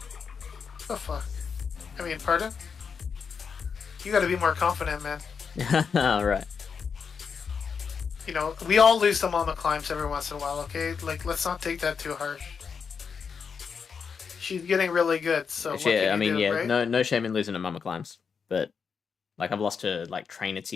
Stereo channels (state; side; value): quieter; right; 6.1 dB